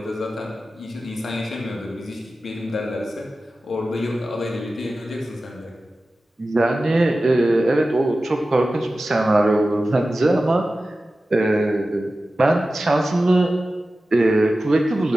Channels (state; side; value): normal; both; correlation 0.95